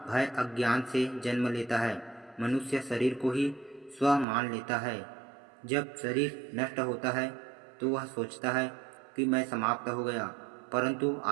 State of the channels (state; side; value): drops out; left; at 4.2 s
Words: भय अज्ञान से जन्म लेता है। मनुष्य शरीर को ही स्व मान लेता है। जब शरीर नष्ट होता है तो वह सोचता है कि मैं समाप्त हो गया, परंतु